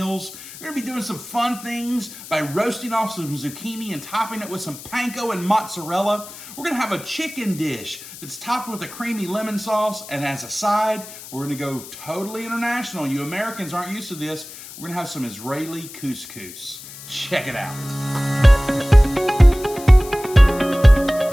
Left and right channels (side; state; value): left; noise; hiss, 15 dB below the sound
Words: We're going to be doing some fun things by roasting off some zucchini and topping it with some panko and mozzarella. We're going to have a chicken dish that's topped with a creamy lemon sauce, and as a side, we're going to go totally international. You Americans aren't used to this. We're going to have some Israeli couscous. Check it out.